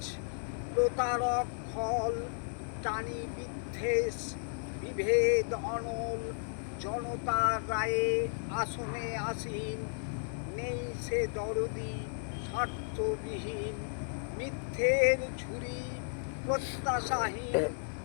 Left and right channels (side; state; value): right; silent; digital silence